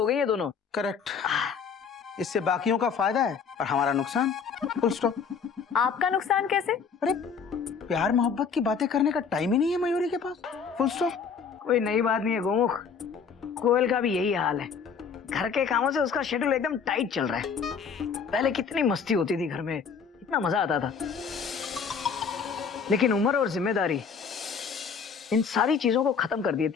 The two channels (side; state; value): right; quieter; 6.1 dB